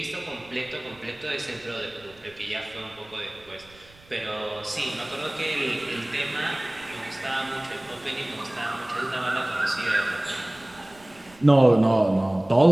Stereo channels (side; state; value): right; noise; rumble, 26 dB below the sound